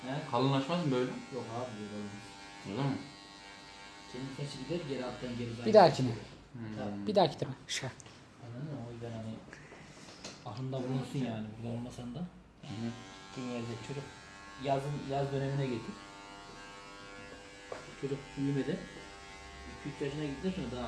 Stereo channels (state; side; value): identical; both; correlation 1.00